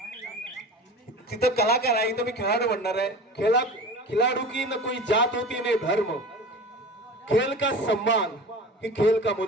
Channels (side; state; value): both; normal; correlation 0.36